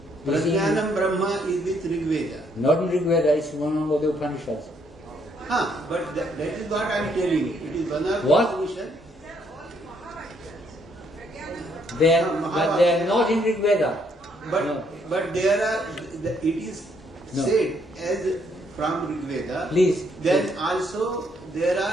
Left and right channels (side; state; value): both; normal; correlation 0.70